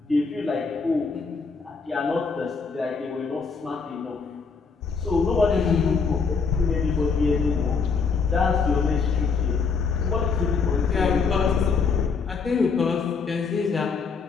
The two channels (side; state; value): right; quieter; 5.1 dB